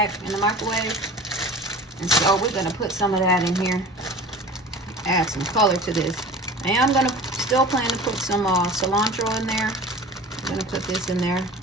in the microwave. And so we're gonna put some of that in here, add some color to this. And I'm gonna still plan to put some cilantro in there. I'm gonna put this in there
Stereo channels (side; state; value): both; normal; correlation 0.39